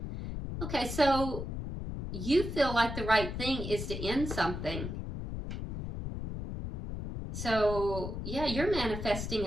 Okay, so you feel like the right thing is to end something. So, yeah, you're manifesting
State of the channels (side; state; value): left; noise; rumble, 5 dB below the sound